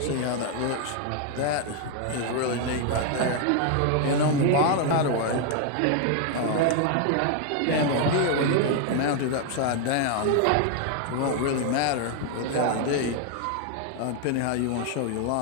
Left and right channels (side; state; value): both; different; correlation 0.00